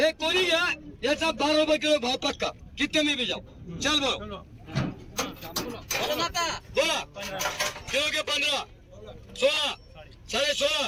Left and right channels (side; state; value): both; identical; correlation 1.00